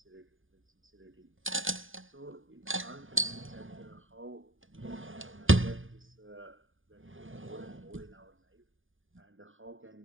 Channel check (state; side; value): late; left; 0.58 ms